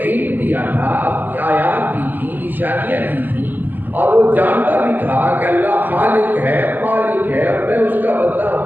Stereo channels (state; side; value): late; left; 0.087 ms